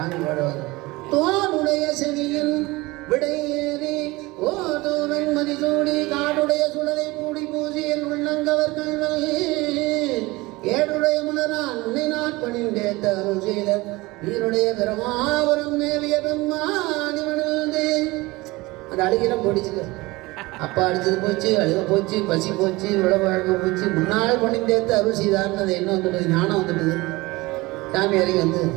பாடுவார். தோனுடைய செவியில் விடையேறி ஓதோவன் மதிசூடி காடுடைய சுடலை மூடி பூசியல் உள்ளங்கவர் கல்வல் ஏடுடைய முனரான் உன்னை நாட்பணிந்தே தருள் செய்த நீருடைய பிரமாபுரம் மேவிய பெம்மானி மணிழ்ந்தே. அந்த அழுகிலம் போடிச்சுக்க. அப்பா அடிச்சது போச்சு, அழுக போச்சு, பசி போச்சு, விளவழக போச்சு, முன்னாள் பணிந்தேத்து அருள் செய்தார்னு அது என்ன வந்துட்டது, ஞானம் வந்துட்டுது. சாமி இறங்கி வந்து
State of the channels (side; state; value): left; quieter; 21.7 dB